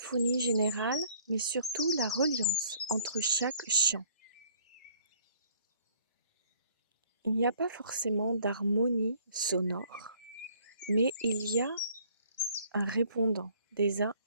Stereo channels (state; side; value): inverted; both; correlation -0.59